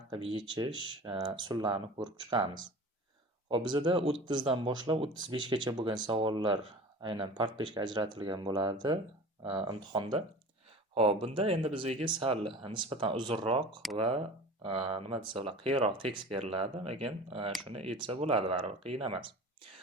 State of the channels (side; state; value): both; normal; correlation 0.38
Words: qilib yechish usullarini ko'rib chiqamiz. Xo'p, bizada 30 dan boshlab 35 gacha bo'lgan savollar aynan part 5 ga ajratilgan bo'ladi imtihonda. Xo'p, bunda endi bizga sal nisbatan uzunroq va nima desa bo'ladi, qiyinroq tekst beriladi, lekin shuni yetsa bo'ladi, baribir qiyin emas.